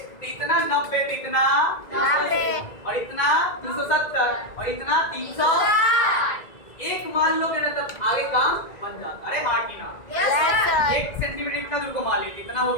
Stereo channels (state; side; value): late; right; 1.9 ms